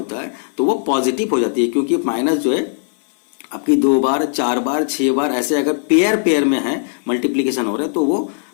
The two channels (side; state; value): right; silent; 58 dB below the other